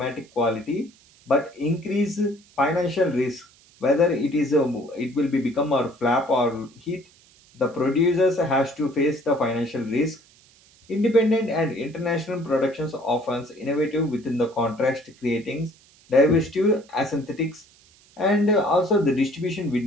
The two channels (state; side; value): noise; right; hiss, 29 dB below the sound